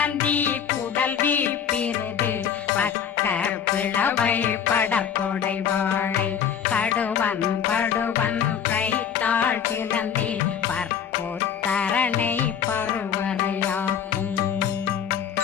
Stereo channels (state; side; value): quieter; right; 8.1 dB